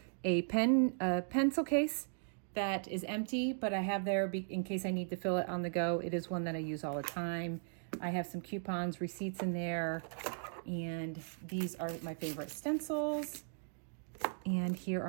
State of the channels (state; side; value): silent; left; digital silence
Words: A pencil case that is empty, but I have there in case I need to fill it on the go. It is one that I use all the time. I have some coupons, receipts in there, and these are my favorite stencils. And here